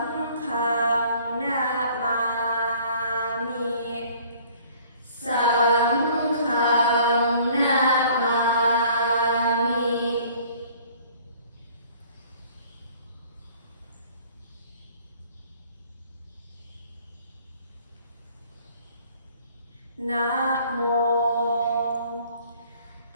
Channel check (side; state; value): both; inverted; correlation -0.54